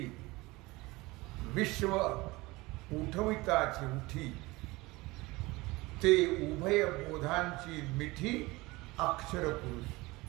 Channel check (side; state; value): left; quieter; 21.8 dB